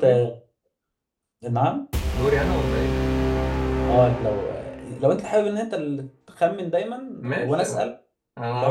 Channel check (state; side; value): identical; both; correlation 1.00